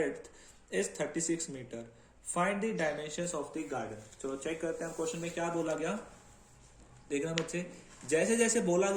is 36 meter. Find the dimensions of the garden. चलो check करते हैं question में क्या बोला गया. देखना बच्चे, जैसे जैसे बोला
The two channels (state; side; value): identical; both; correlation 1.00